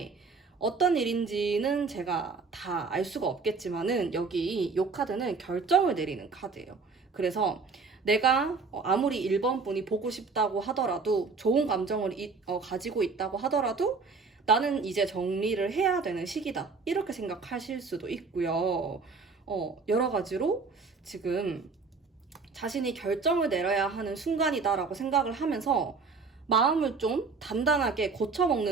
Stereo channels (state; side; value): quieter; left; 4.6 dB